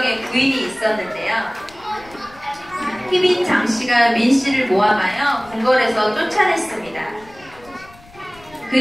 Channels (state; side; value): noise; left; rumble, 24 dB below the sound